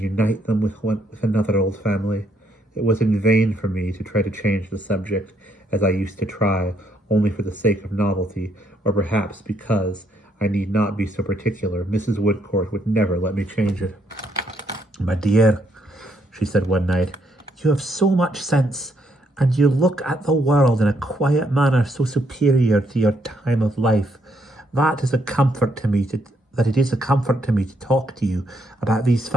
them with another old family." It was in vain for me to try to change the subject, as I used to try, only for the sake of novelty, or perhaps because I need not be so particular. Mrs. Woodcourt would never let me change it. "My dear," she said one night, "you have so much sense, and you look at the world in a quiet manner so superior to your time of life, that it is a comfort to me to talk to you about these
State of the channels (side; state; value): both; normal; correlation 0.73